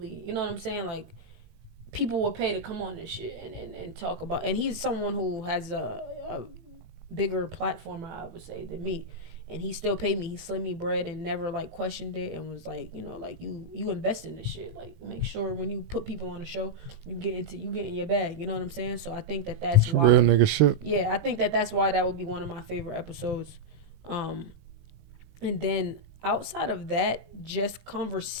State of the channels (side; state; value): left; late; 19 ms